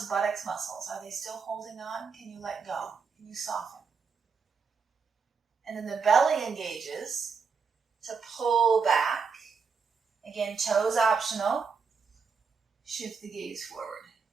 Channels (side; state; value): left; quieter; 5.5 dB